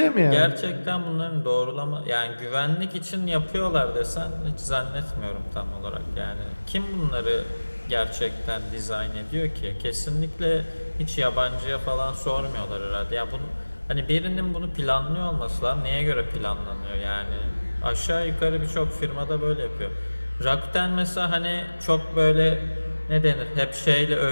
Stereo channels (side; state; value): both; inverted; correlation -1.00